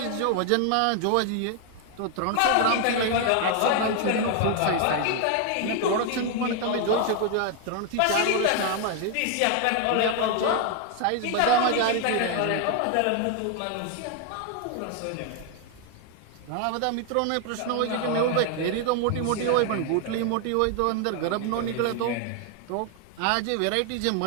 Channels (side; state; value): both; different; correlation 0.00